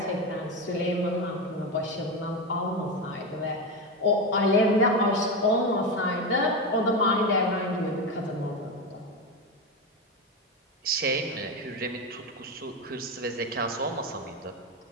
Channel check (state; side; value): normal; both; correlation 0.16